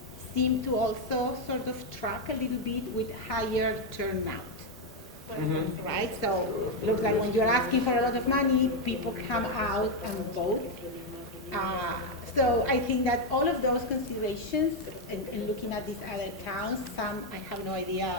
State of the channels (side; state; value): both; normal; correlation 0.04